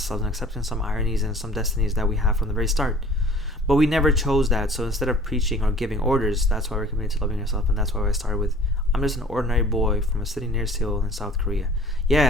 and accepting some ironies and some destinies that we have from the very start. But we never chose that. So instead of preaching or giving orders, that's why we're committed to loving yourself. And that's why I started with, I'm just an ordinary boy from a city near Seoul in South Korea.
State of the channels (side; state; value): both; normal; correlation 0.49